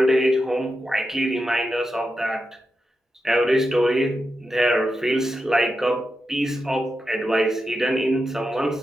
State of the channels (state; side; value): normal; both; correlation 0.89